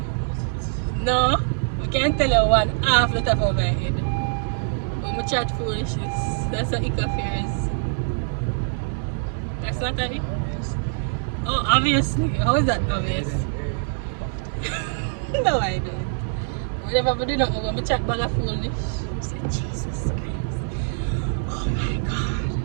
No, I can't tell you one half the top of my head. I chat foolishness. That's an ick of yours. That's not an ick? Oh, obviously. How is that obvious? No, I don't. Whenever I do not know, I'm chat bag of foolish. I say, Jesus Christ. Oh my God.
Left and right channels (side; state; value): left; silent; 63 dB below the other